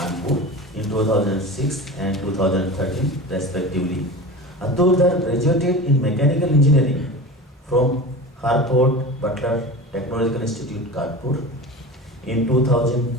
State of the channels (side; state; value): both; normal; correlation 0.32